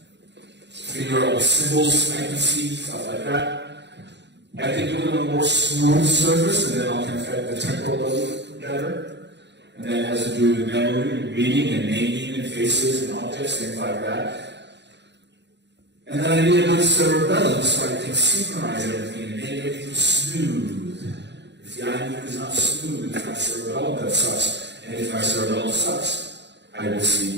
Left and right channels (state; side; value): late; left; 0.51 ms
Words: Figure out symbols I can see, stuff like that. I can do it on a more smooth surface, and then I can affect the temporal lobe better. And that has to do with memory, reading, and naming, and faces, and objects, things like that. And then I need a good cerebellum so I can synchronize everything and make everything smooth. If the eye movement is not smooth, it's my cerebellum that sucks. And if my cerebellum sucks, I will see